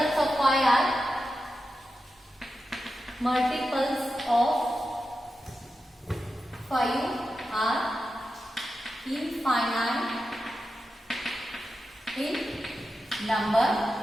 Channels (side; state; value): both; normal; correlation 0.91